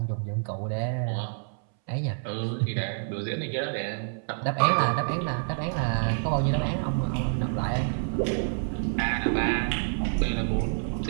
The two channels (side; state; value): left; silent; 60 dB below the other